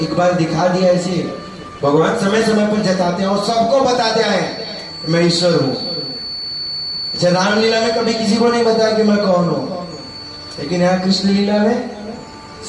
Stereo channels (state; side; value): identical; both; correlation 1.00